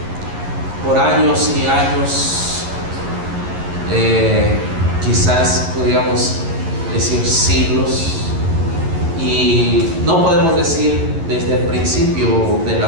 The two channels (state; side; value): late; left; 11 ms